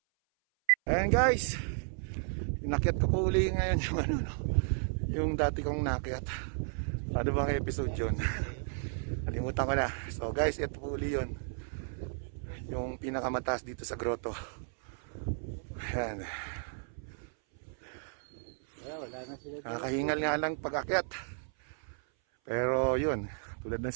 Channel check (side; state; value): left; silent; 55 dB below the other